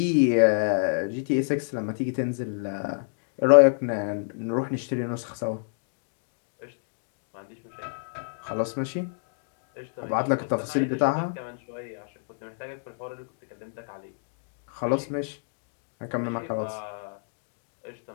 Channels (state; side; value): silent; right; digital silence